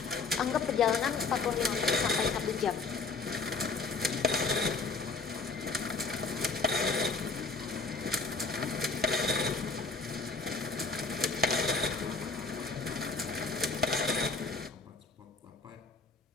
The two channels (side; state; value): right; quieter; 4.2 dB